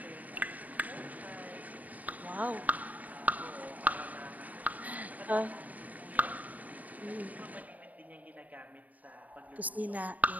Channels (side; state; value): left; late; 0.075 ms